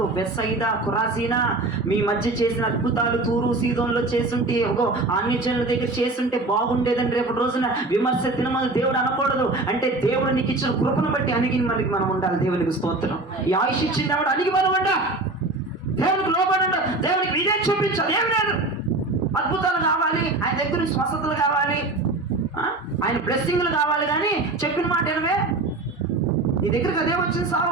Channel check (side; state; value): left; quieter; 3.0 dB